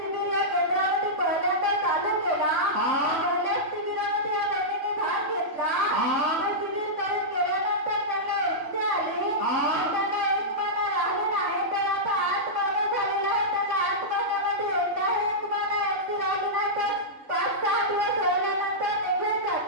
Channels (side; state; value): left; late; 3.5 ms